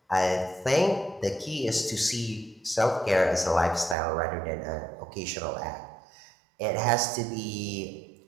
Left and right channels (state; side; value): drops out; left; at 4.0 s